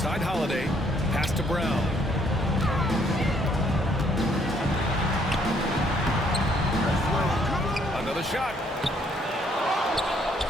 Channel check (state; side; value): normal; both; correlation 0.67